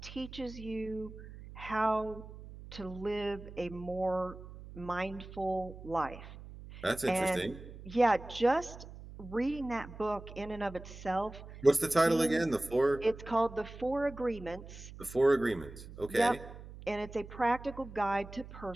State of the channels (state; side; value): noise; right; hum, 15 dB below the sound